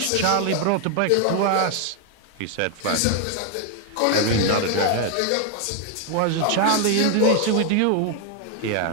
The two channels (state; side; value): different; both; correlation 0.00